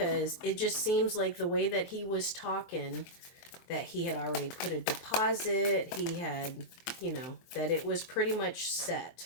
it just seems like the way that he was talking, that he had already put a deposit, he had, that it was pretty much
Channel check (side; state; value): right; late; 23 ms